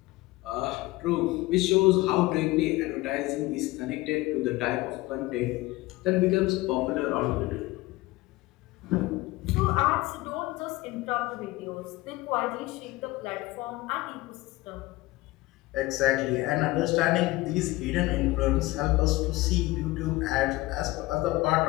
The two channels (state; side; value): quieter; right; 19.5 dB